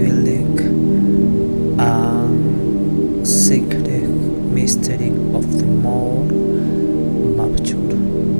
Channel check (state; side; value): inverted; both; correlation -1.00